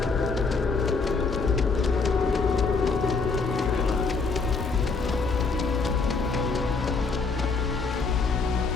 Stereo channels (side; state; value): right; quieter; 4.4 dB